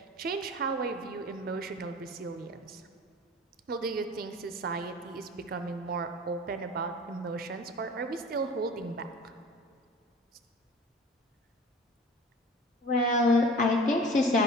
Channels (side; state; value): both; normal; correlation 0.42